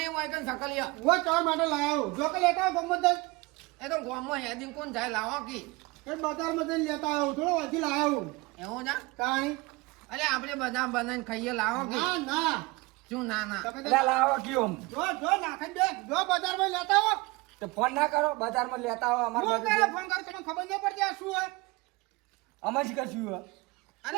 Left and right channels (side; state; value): left; quieter; 23.7 dB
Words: હોય કે સકલિયા હું ચા માટે લાવ્યો જો કે લેતા ગમત એ તો ગોમમાં હેદી કોણ જાય લાવો કે એ બજારમાં જઈને લેતા આવ્યો થોડો વાંચી લાવ્યો એવું છે કાંઈ અરે આપણે બધા બનાવીને ખાઈએ લાવો કે ના ના શું ના ના તમે એટલે લાવો કયો જો નાખી દે જો બજારમાં લેતા આવો તો ફોન ના કરો બજારમાં લેતા આવો અમાર હું બાજુ કરે ફોન કર તમને ખબર નહીં પડતી આ શું હોય અમે જ કશું હે.